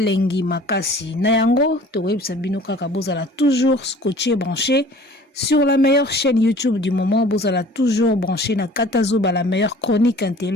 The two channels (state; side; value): normal; both; correlation 0.48